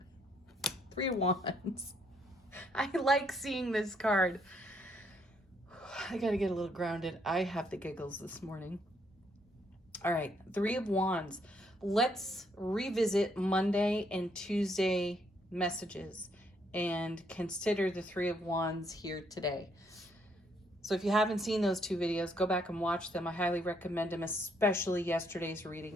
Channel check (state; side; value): normal; both; correlation 0.71